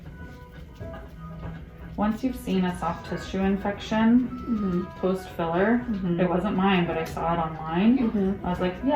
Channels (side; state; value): both; identical; correlation 1.00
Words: Once you've seen a soft tissue infection post-filler, it wasn't mine, but I saw it online. I was like,